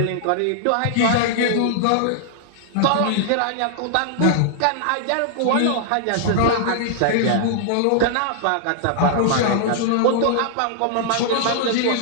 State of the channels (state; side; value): different; both; correlation -0.01